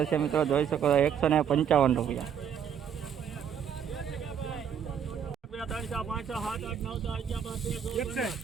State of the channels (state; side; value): quieter; left; 8.1 dB